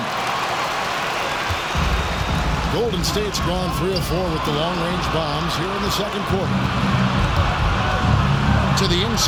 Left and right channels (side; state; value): both; identical; correlation 1.00